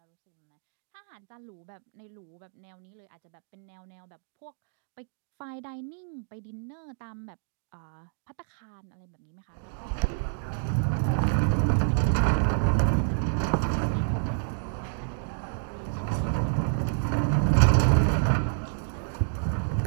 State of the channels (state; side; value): silent; left; digital silence